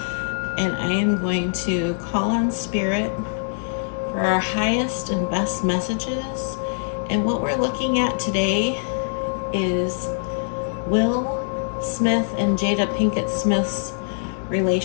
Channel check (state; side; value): silent; right; digital silence